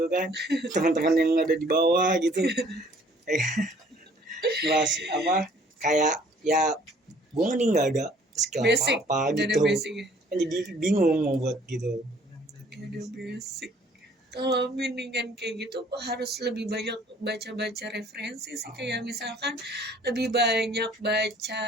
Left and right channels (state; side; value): normal; both; correlation 0.57